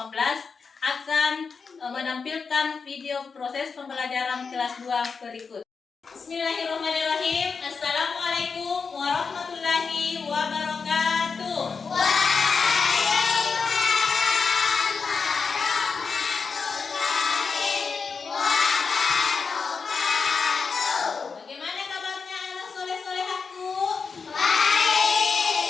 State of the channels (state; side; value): quieter; right; 5.2 dB